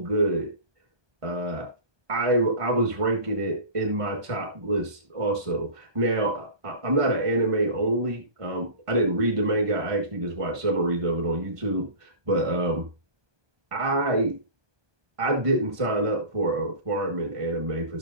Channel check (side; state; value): left; late; 1.2 ms